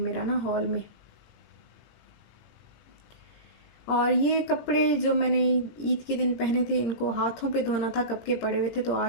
ना, हॉल में। और ये कपड़े जो मैंने ईद के दिन पहने थे, इनको हाथों पे धोना था, कब के पड़े हुए थे, तो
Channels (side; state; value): right; late; 17 ms